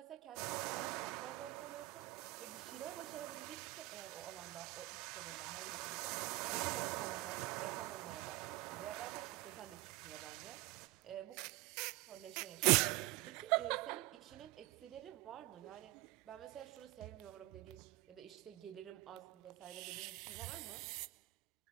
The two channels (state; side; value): quieter; left; 19.6 dB